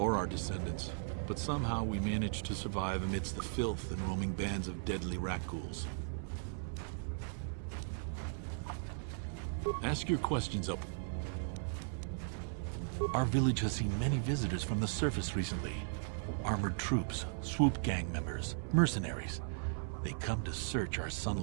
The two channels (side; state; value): left; silent; 53 dB below the other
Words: our descendants, but somehow we managed to survive amidst the filth and roaming bands of deadly rat ghouls. Ask your questions up. Our village has seen many visitors from the surface recently. Armored troops, swoop gang members, mercenaries. They come to search our